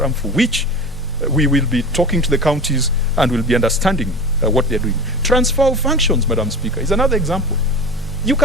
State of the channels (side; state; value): both; normal; correlation 0.33